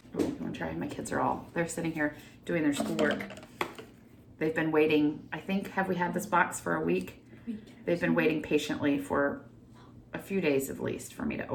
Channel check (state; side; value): identical; both; correlation 1.00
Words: Ooh, you wanna try? My kids they're sitting here doing their schoolwork. They've been waiting, I think, have we had this box for a week? They've been waiting patiently for a few days at least for me to